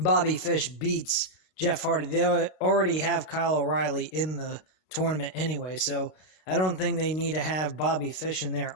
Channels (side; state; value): right; late; 32 ms